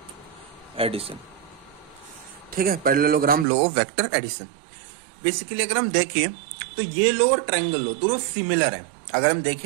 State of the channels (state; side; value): drops out; left; at 3.5 s